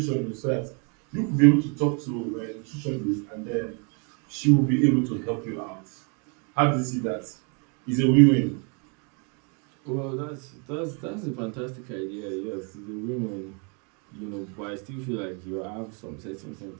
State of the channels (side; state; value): left; quieter; 36.0 dB